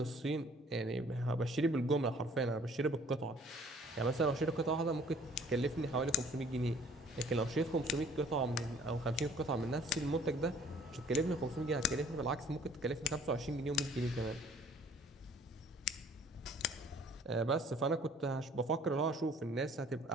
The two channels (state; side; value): normal; both; correlation 0.56